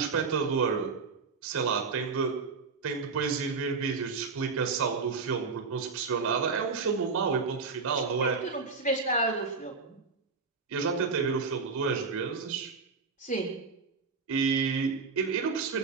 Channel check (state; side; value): quieter; left; 4.8 dB